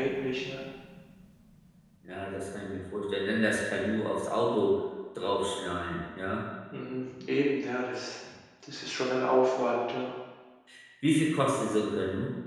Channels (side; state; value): both; identical; correlation 1.00